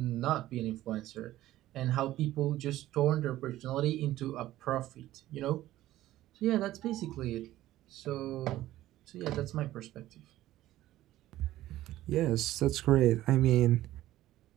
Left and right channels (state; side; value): quieter; left; 14.8 dB